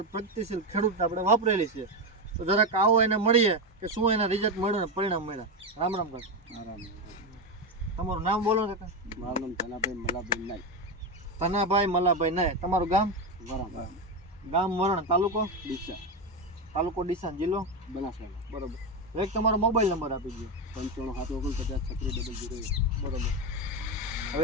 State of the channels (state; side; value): normal; both; correlation 0.12